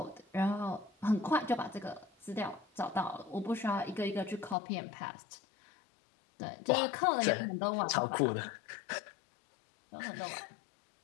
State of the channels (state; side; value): drops out; right; at 4.5 s